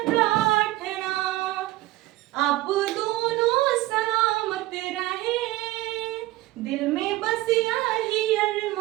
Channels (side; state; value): left; quieter; 17.4 dB